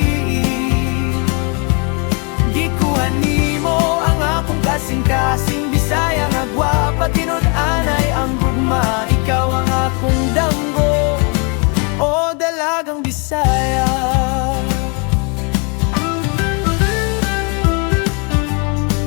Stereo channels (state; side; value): quieter; right; 34.6 dB